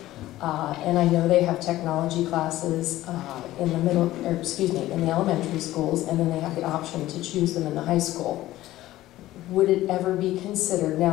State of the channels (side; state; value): right; quieter; 15.5 dB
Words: And I know they have technology classes in the elementary schools, and then they have the option to choose them in the high school. Would it ever be considered,